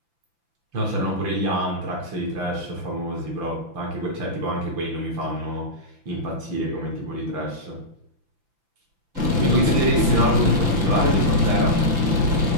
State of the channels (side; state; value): left; late; 5.9 ms